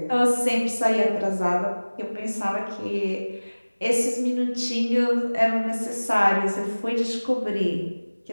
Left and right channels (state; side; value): inverted; both; correlation -1.00